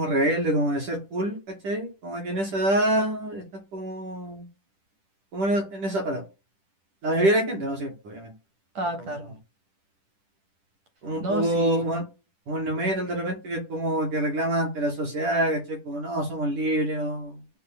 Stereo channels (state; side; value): late; left; 10 ms